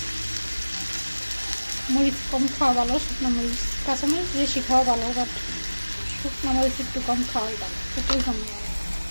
মরিচ কম খাওয়া ভালো, শুকনো মরিচ, কাঁচামরিচ বেশি খাওয়া ভালো, বাট শুকনো মরিচ একটু কম খাওয়াই ভালো, সেটাই কম লাগে।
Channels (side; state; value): both; inverted; correlation -1.00